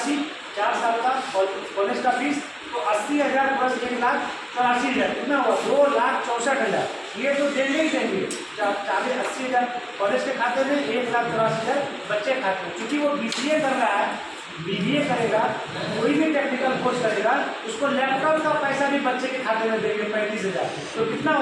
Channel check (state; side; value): identical; both; correlation 1.00